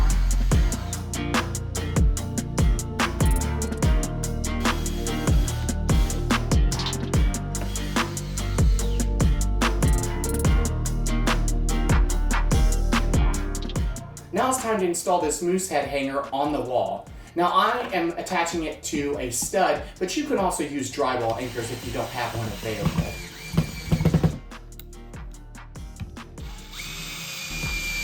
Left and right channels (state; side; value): identical; both; correlation 1.00